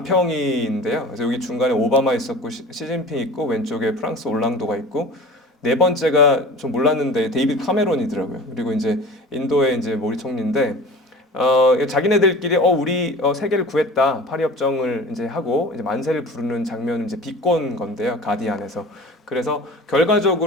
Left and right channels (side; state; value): both; normal; correlation 0.40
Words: 그래서 여기 중간에 오바마 있었고 시진핑 있고 왼쪽에 프랑스 올랑도가 있고 네 번째가 좀 몰랐는데 데이비드 카메론이더라고요. 그리고 이제 인도의 이제 모리 총리인데 자기네들끼리 우리 세계를 구했다 파리 협정을 이제 하고 이제 만세를 부르는 장면을 이제 비꼰 건데요. 가디안에서. 그래서